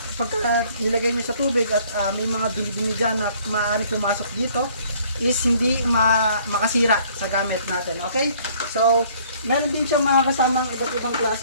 pagka nilagay nyo sa tubig at may mga dumi-dumi dyan na maaari pumasok dito, is hindi makasira sa gamit natin. Okay? So, meron din siyang mga kasamang iba't ibang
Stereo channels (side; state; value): both; inverted; correlation -0.59